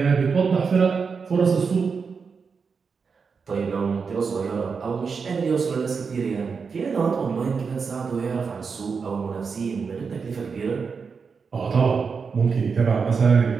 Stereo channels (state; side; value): quieter; left; 5.4 dB